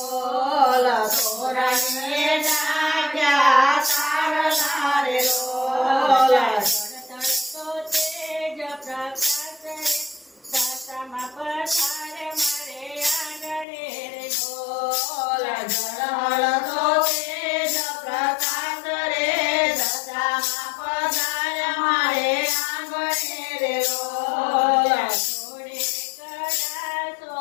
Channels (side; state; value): right; drops out; at 13.7 s